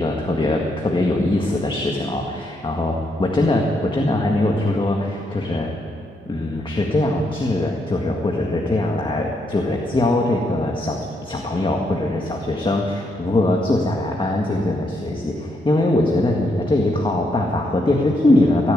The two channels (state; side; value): normal; both; correlation 0.77